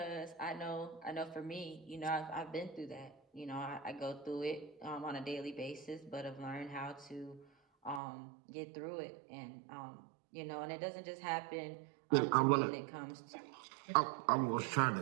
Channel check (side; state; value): left; drops out; at 8.0 s